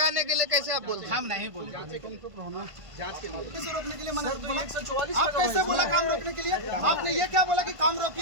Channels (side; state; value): left; late; 1.5 ms